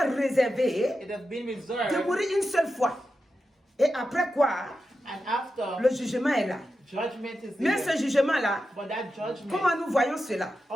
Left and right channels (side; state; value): both; normal; correlation 0.90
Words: réservé it has been de reserved, mourir une seule fois. Et après quoi, and after, le jugement est là. judgment is Mais there. ce jugement-là, But that judgment, comment nous voyons cela?